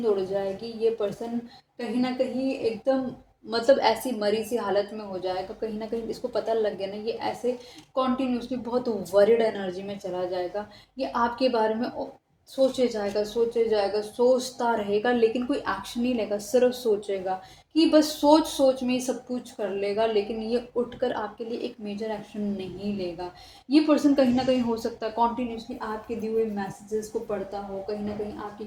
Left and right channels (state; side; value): identical; both; correlation 1.00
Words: उड़ जाएगी। ये पर्सन कहीं ना कहीं एकदम मतलब ऐसी मरी सी हालत में हो जाएगा, कहीं ना कहीं इसको पता लग गया ना, ये ऐसे कॉन्टिन्यूसली बहुत वरिड एनर्जी में चला जाएगा। ये आपके बारे में सोचे जाएगा, सोचे जाएगा, सोचता रहेगा, लेकिन कोई एक्शन नहीं लेगा, सिर्फ सोचेगा कि बस सोच सोच में ही सब कुछ कर लेगा, लेकिन ये उठकर आपके लिए एक मेजर एक्शन नहीं लेगा। ये पर्सन कहीं ना कहीं हो सकता है कॉन्टिन्यूसली आपके दिए हुए मैसेजेस को पढ़ता हो, कहीं ना कहीं आपकी